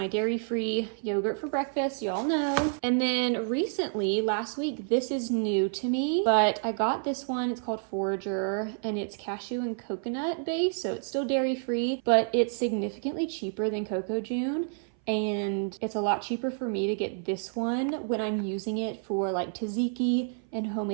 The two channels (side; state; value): left; silent; 57 dB below the other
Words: dairy-free yogurt for breakfast, you all know. And then recently, last week, this is new to me, but I got this one. It's called Forager, and it's cashew and coconut based, so it's still dairy-free, but it's significantly cheaper than Coco June. And it's a lot cheaper for me to get this one when I'm using it for like tzatziki and